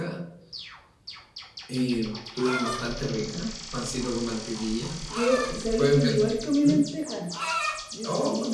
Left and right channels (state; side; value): identical; both; correlation 1.00